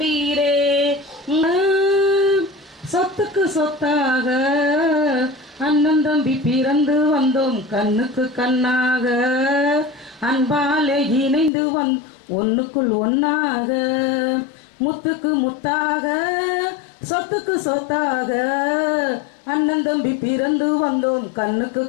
சொத்துக்கு சொத்தாக அண்ணன் தம்பி பிறந்து வந்தோம் கண்ணுக்கு கண்ணாக, அன்பாலே இணைந்து ஒன்னுக்குள் ஒன்னாக, முத்துக்கு முத்தாக சொத்துக்கு சொத்தாக அண்ணன் தம்பி பிறந்து வந்தோம் கண்ணுக்கு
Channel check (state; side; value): drops out; right; at 11.5 s